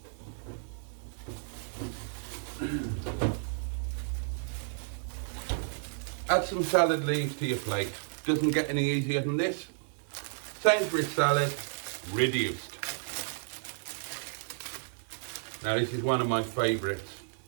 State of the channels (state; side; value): silent; left; digital silence